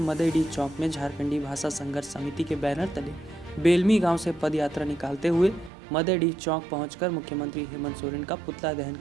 चौक में झारखंडी भाषा संघर्ष समिति के बैनर तले बेलमी गांव से पद यात्रा निकालते हुए मदेडी चौक पहुंचकर मुख्यमंत्री हेमंत सोरेन का पुतला दहन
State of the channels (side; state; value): left; drops out; at 5.7 s